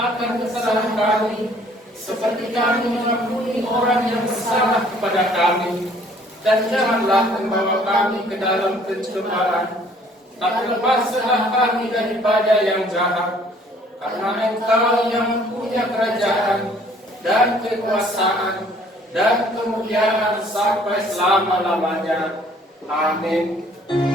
kesalahan kami, seperti kami mengampuni orang yang bersalah kepada kami. Dan janganlah membawa kami ke dalam pencobaan, tapi lepaskanlah kami daripada yang jahat. Karena Engkau yang punya kerajaan dan kekuasaan dan kemuliaan sampai selama-lamanya. Amin.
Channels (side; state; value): both; normal; correlation 0.58